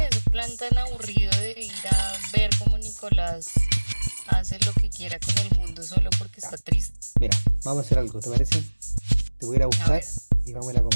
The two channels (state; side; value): inverted; both; correlation -1.00